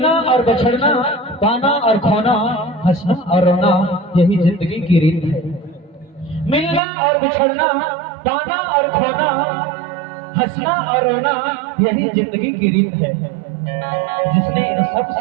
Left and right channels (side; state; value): left; drops out; at 6.8 s